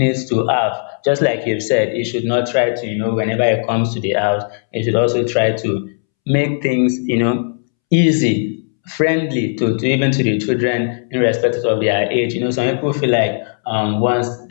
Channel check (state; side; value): silent; right; 68 dB below the other